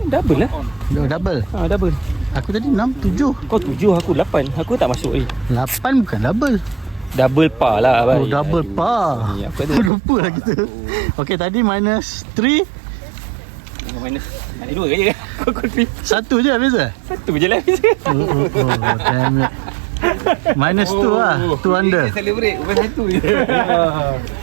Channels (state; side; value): drops out; left; at 9.9 s